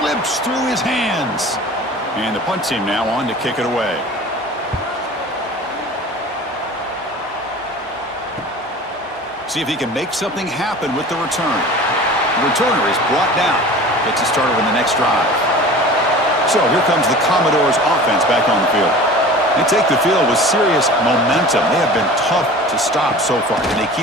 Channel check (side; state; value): both; normal; correlation 0.40